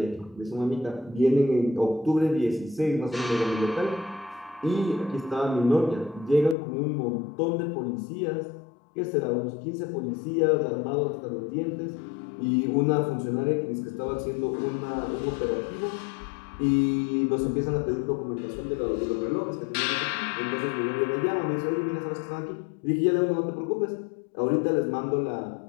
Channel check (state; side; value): drops out; right; at 6.6 s